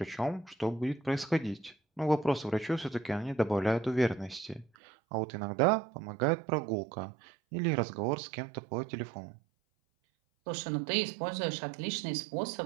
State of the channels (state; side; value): drops out; left; at 4.7 s